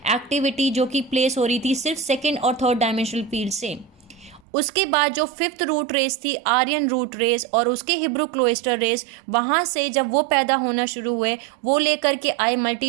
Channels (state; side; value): drops out; left; at 4.4 s